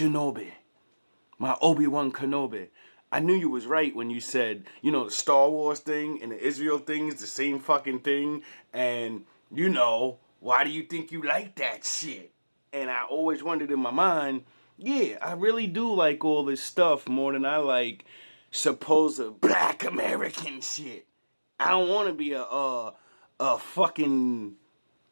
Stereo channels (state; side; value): inverted; both; correlation -1.00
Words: my Obi-Wan Kenobi. I knew you was right when you said, the Star Wars thing and the Israel thing is the same fucking thing. And, why do you think you like that shit? And I always wondered in my mind, yeah, I really do like all this stuff more than I like supposed Black American shit. I don't want to be a fucking